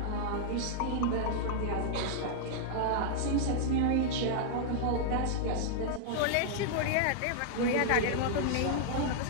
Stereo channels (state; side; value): different; both; correlation -0.01